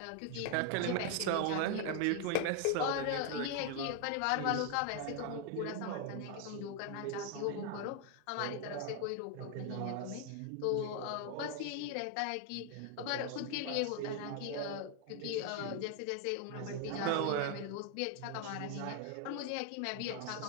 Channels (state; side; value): different; both; correlation 0.00